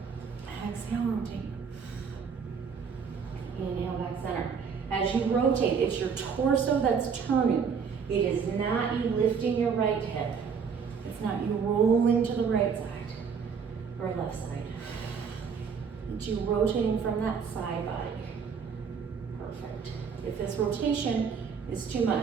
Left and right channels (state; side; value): quieter; left; 6.2 dB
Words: Exhale, rotate. Inhale, back center. As you rotate, it's your torso that's turning. It is not you lifting your right hip. It's not you rolling to the right side or left side. It's you rotating from that side body. Perfect. If this rotation is too